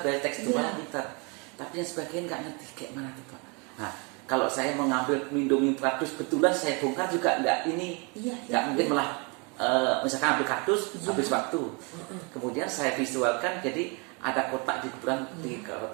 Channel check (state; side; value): quieter; left; 31.9 dB